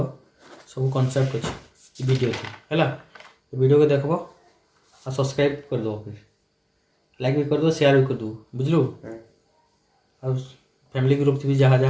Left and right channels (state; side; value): identical; both; correlation 1.00